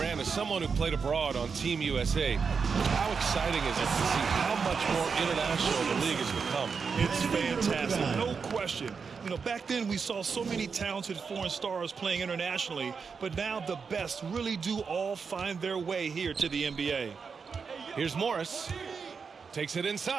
as someone who played abroad on Team USA, how exciting is it to see how much more international the league has become? It's fantastic, no question. You know, back then we saw so many talented foreign stars playing internationally, but now the best really do all find their way here to the NBA. Here's Morris. Takes it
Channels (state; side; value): quieter; left; 5.6 dB